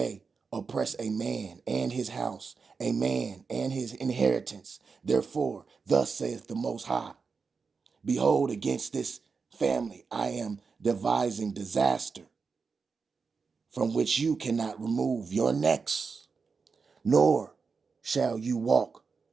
oppress a man and his house, a man and his inheritance. Therefore, thus saith the Most High, behold, against this family I am devising disaster, from which you cannot remove your necks, nor shall you walk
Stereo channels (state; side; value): quieter; left; 5.0 dB